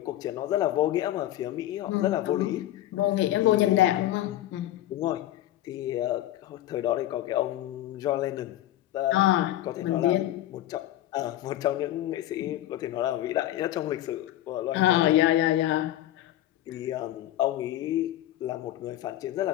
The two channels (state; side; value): quieter; right; 13.8 dB